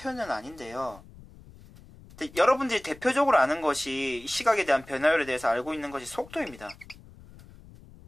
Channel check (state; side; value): noise; left; rumble, 21 dB below the sound